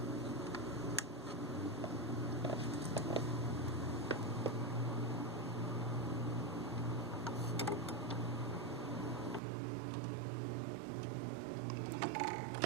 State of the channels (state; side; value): drops out; left; at 9.4 s